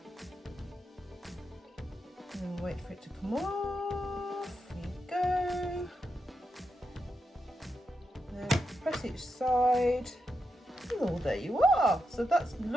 And wait for it to come off. There you go. Then press each side. Oh, there you are. So that's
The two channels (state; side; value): normal; both; correlation 0.86